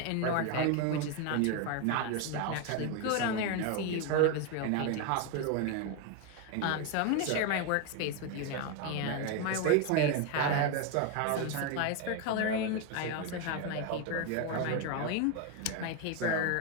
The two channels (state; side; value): different; both; correlation 0.02